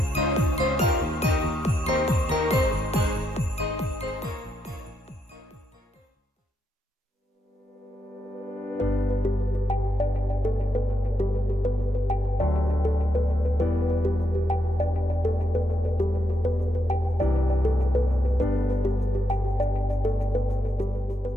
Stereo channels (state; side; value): normal; both; correlation 0.81